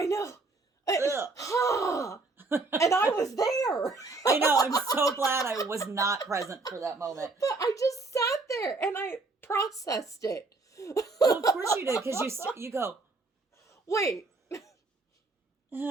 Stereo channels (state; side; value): quieter; left; 3.6 dB